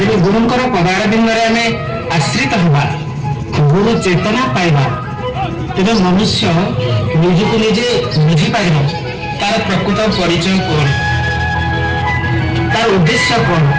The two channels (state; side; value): identical; both; correlation 1.00